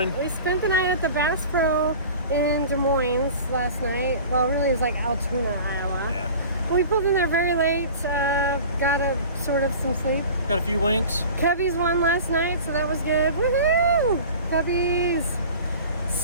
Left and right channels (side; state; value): both; inverted; correlation -0.40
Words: We spent the night at the Bass Pro in Des Moines last night. Well, really, it was like Altoona, Iowa. Yeah. But we pulled in there very late. Got some sleep. Got a few winks. Cubbies won last night, so that was good. Woohoo! Cubbies!